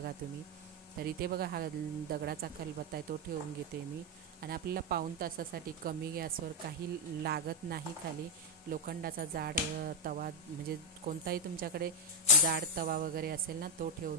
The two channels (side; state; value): both; normal; correlation 0.01